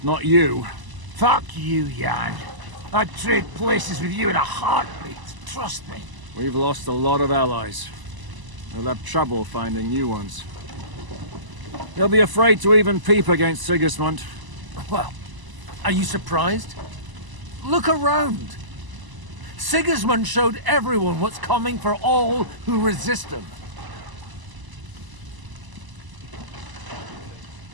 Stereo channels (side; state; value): left; late; 1.0 ms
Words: not you. Fuck you, Jan. I'd trade places with you in a heartbeat, trust me. We've lost a lot of allies. We'll have trouble finding new ones. They'll be afraid to even peep against Sigismund. Well, are you surprised? Look around. Sigismund showed everyone what's coming for all who resist him.